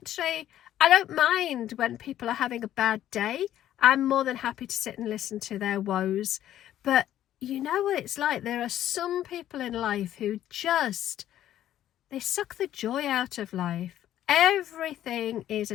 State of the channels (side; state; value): right; quieter; 12.1 dB